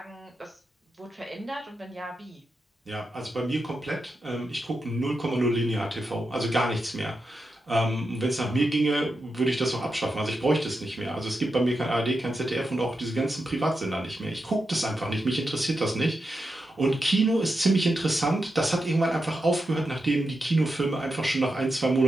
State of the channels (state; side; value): normal; both; correlation 0.88